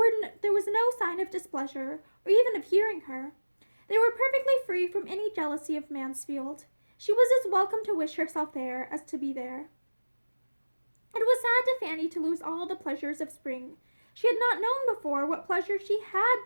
no sign of displeasure, or even of hearing her. They were perfectly free from any jealousy of Mansfield. She was as welcome to wish herself there as to be there. It was sad to Fanny to lose all the pleasures of spring. She had not known before what pleasure she had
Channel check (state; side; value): inverted; both; correlation -1.00